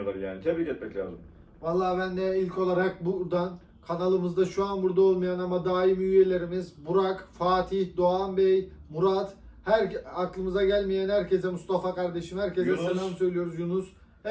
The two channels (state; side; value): identical; both; correlation 1.00